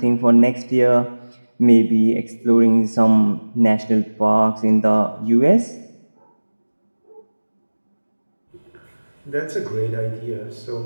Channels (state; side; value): inverted; both; correlation -1.00